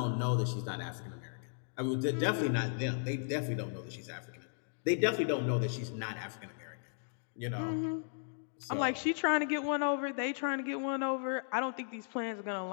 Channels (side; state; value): right; silent; digital silence